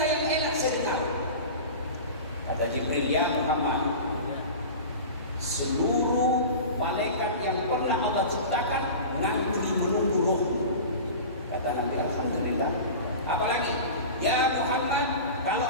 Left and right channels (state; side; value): inverted; both; correlation -0.33